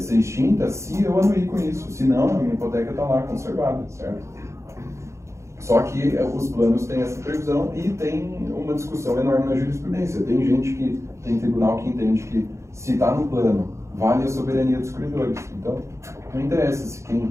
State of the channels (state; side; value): late; left; 0.14 ms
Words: extinta se eu anuir com isso, senão a minha hipoteca está lá conservada, certo? Só que os planos têm essa previsão e tem uma discussão enorme na jurisprudência. Tem tribunal que entende que se está no plano, vale a soberania dos credores. Então, não interessa se